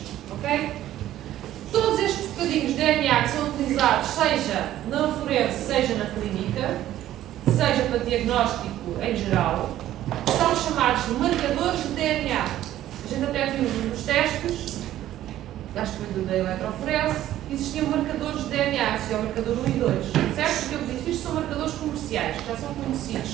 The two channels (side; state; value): left; quieter; 13.1 dB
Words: Okay? Todos estes bocadinhos de DNA que são utilizados, seja na forense, seja na clínica, seja para diagnóstico em geral, são chamados de marcadores de DNA. A gente até viu nos testes, acho que foi da eletroforese, existiam marcadores de DNA, existia o marcador 1 e 2, certo? Porque eu disse, isto são marcadores comerciais, que já são